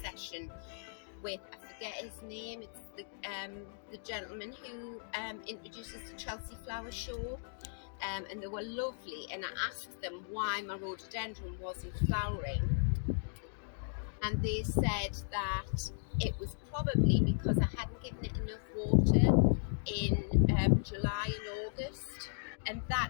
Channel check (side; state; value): right; silent; digital silence